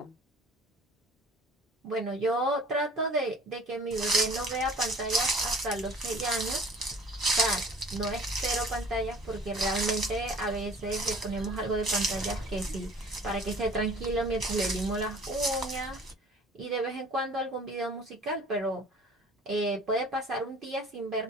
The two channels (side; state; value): both; normal; correlation 0.49